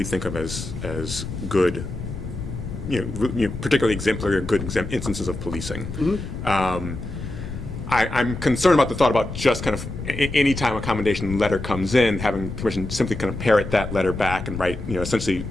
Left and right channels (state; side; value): noise; left; rumble, 8 dB below the sound